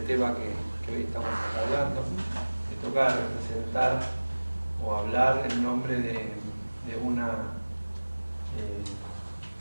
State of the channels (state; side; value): inverted; both; correlation -1.00